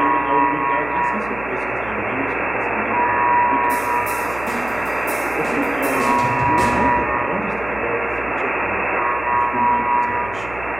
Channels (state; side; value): noise; right; hum, 16 dB below the sound